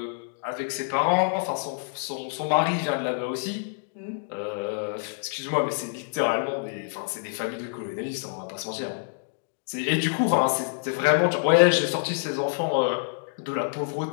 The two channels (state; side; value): silent; right; digital silence